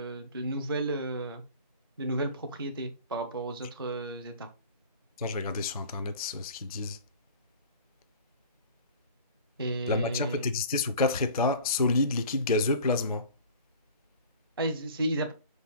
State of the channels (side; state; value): both; inverted; correlation -0.43